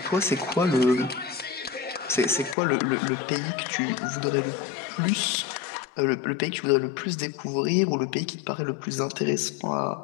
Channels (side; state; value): right; drops out; at 2.6 s